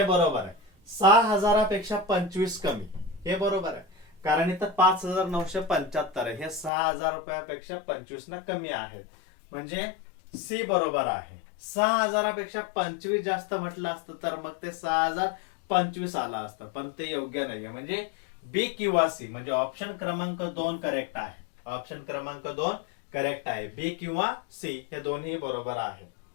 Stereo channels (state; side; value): drops out; right; at 6.7 s